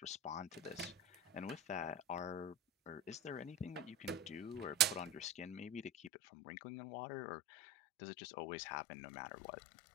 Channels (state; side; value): drops out; right; at 6.1 s